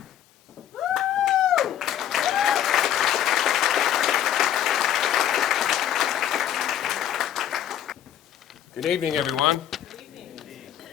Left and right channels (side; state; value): right; quieter; 10.7 dB